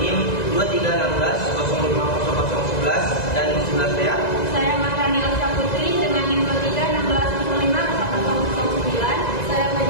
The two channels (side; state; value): right; late; 2.0 ms